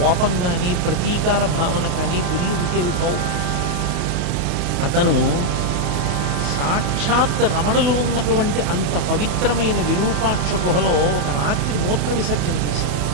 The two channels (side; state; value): left; late; 28 ms